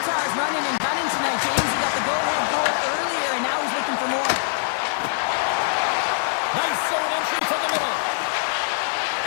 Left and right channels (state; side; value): silent; right; digital silence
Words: running and gunning tonight, James. He got the go-ahead goal earlier, and now he's looking for more. Nice zone entry from the middle.